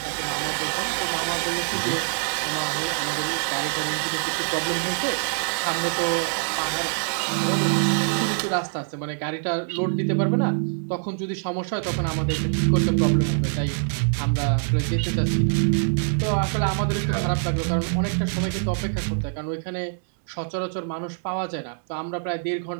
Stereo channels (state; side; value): silent; left; digital silence